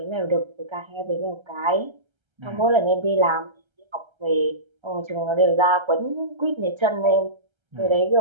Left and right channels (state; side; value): late; left; 1.3 ms